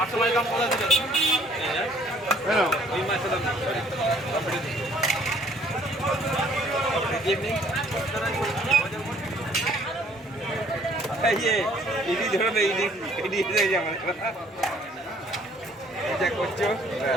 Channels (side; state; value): both; normal; correlation 0.60